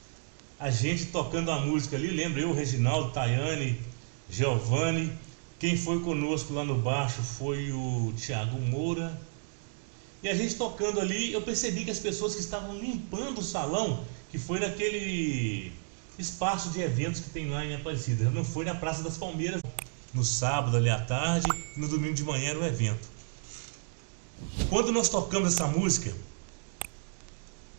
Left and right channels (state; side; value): silent; left; digital silence